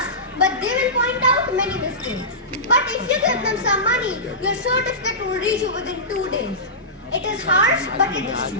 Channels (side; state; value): both; normal; correlation -0.19